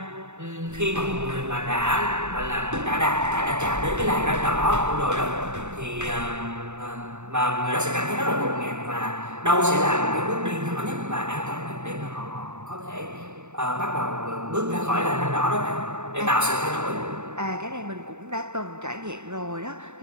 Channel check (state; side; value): late; left; 0.83 ms